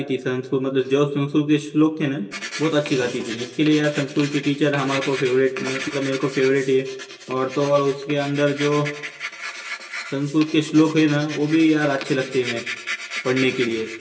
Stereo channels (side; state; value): both; identical; correlation 1.00